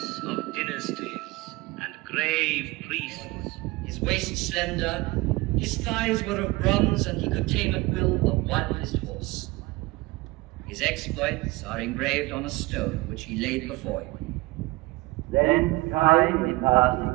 of dynasties and grave priests. His waist slender, his thighs were of bronze, and he could tame at will the wildest horse. His exploits are engraved on a stone which he laid before you. Then time in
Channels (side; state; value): left; quieter; 21.7 dB